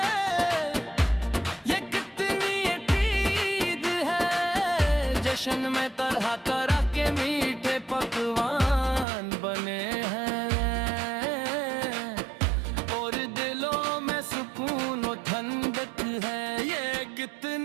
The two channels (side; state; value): left; drops out; at 9.1 s